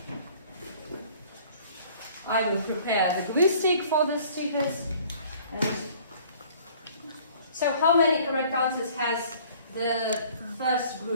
I will prepare the glue stick for the stickers. And so how many correct answers has the first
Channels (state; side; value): inverted; both; correlation -0.53